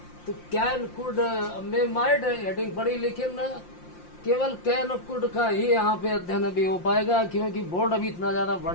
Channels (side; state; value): right; late; 5.7 ms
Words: तो can could may might heading पढ़ी, लेकिन केवल कैन कुड का ही यहाँ पे अध्ययन अभी हो पाएगा, क्योंकि बोर्ड अभी इतना ज्यादा